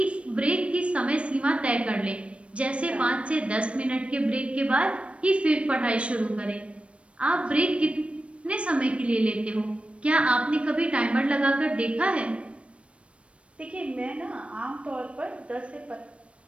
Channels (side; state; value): left; late; 0.061 ms